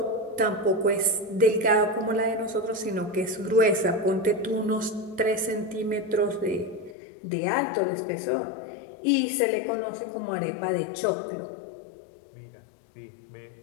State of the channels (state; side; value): drops out; right; at 7.0 s